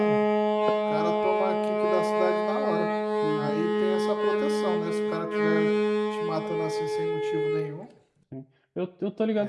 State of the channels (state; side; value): identical; both; correlation 1.00